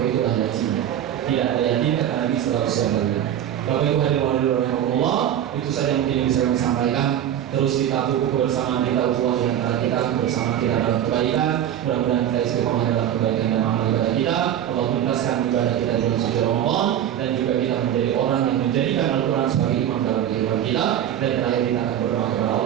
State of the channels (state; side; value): quieter; left; 10.6 dB